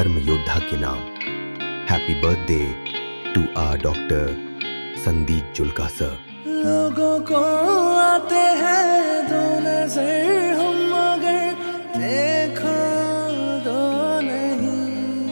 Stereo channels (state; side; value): inverted; both; correlation -1.00